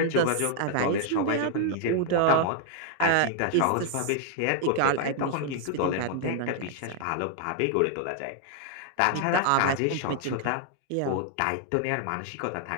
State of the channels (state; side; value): different; both; correlation 0.00